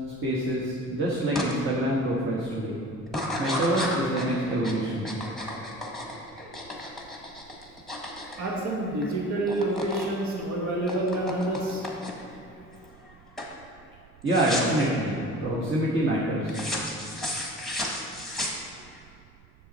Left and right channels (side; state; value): right; noise; rumble, 25 dB below the sound